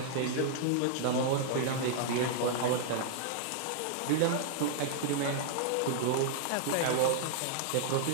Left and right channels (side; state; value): both; different; correlation -0.01